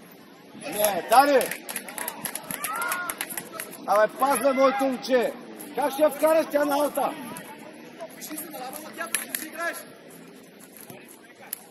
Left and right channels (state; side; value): identical; both; correlation 1.00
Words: не, Дани! Абе, пазва моето момче! Как ще я вкараш тя на алта? Вижи се на лава на тя, ти си играеш!